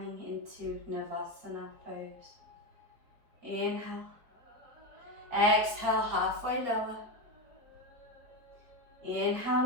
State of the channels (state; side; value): late; left; 4.4 ms